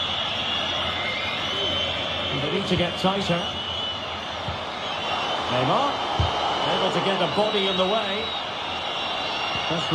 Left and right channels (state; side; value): identical; both; correlation 1.00